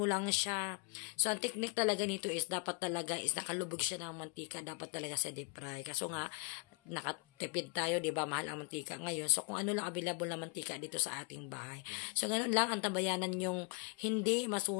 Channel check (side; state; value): right; quieter; 33.8 dB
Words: lang siya. So, ang technique talaga nito is dapat talaga is nakalubog siya ng mantika. Dapat talaga sa deep fry. Kaso nga, nakatipid tayo, di ba? Mahal ang mantika ngayon. So, kung ano lang available na mantika dito sa ating bahay. So, ganun lang ang tabayanan yung hindi